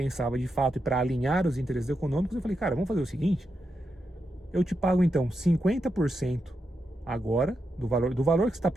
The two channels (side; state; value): both; normal; correlation 0.85